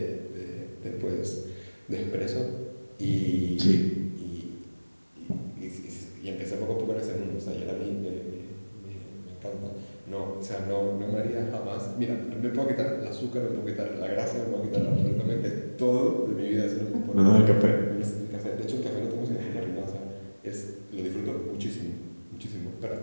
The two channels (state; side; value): inverted; both; correlation -1.00